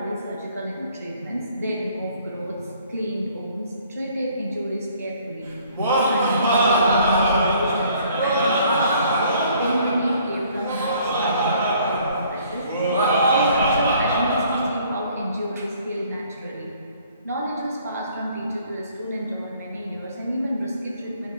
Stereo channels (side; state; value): both; inverted; correlation -0.60